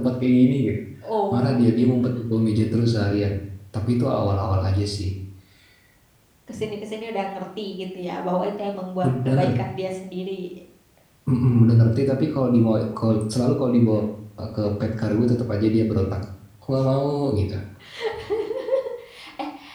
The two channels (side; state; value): both; identical; correlation 1.00